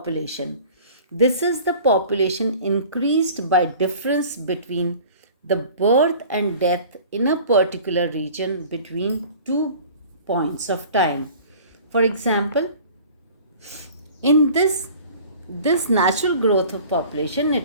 This is the population increased by difference between the birth and death in a particular region between 2 points of time. For example, in this natural growth of population,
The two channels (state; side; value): inverted; both; correlation -0.45